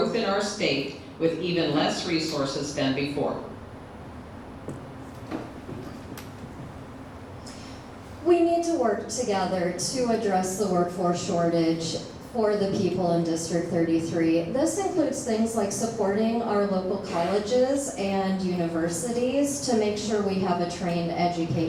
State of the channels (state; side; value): identical; both; correlation 1.00